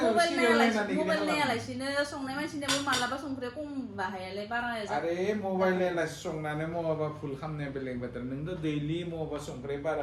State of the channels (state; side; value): identical; both; correlation 1.00